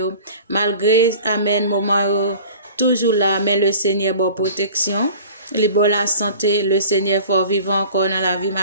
Malgré, amen, moment yo, toujours là, mais le Seigneur bon protection. Les bonnes la santé, le Seigneur fort vivant encore dans la vie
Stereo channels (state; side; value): inverted; both; correlation -0.43